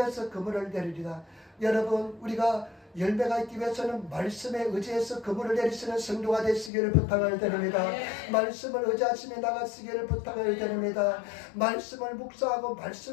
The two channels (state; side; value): drops out; right; at 6.7 s